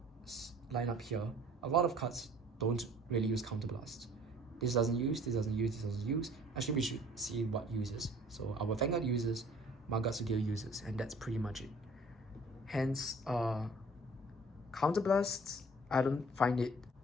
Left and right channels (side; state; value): both; normal; correlation 0.52